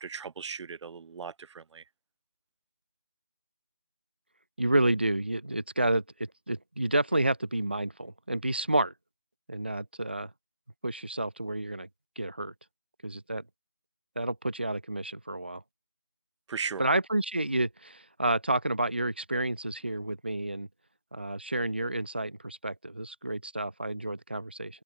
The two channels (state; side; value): inverted; both; correlation -0.80